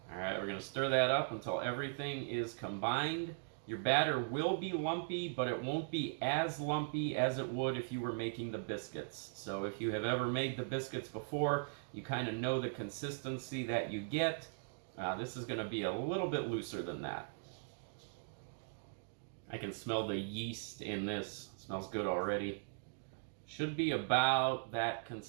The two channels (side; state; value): left; silent; digital silence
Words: Alright, we're going to stir that up until everything is combined. Your batter will be lumpy, but it won't be as lumpy as it would if you were making the biscuits. So if you have ever made the biscuits before, you kind of know the consistency that you get. This is going to be a little bit looser than that. I can smell the yeast in this. It smells good already. Should be about that